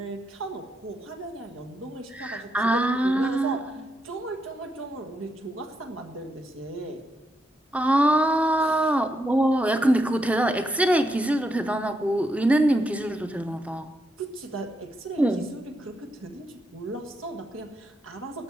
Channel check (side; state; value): both; normal; correlation 0.80